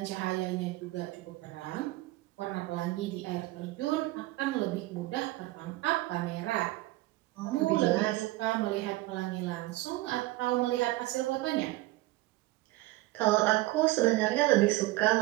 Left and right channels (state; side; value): quieter; left; 18.7 dB